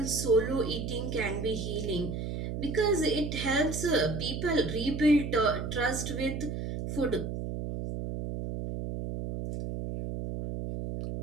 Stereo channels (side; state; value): right; noise; hum, 4 dB below the sound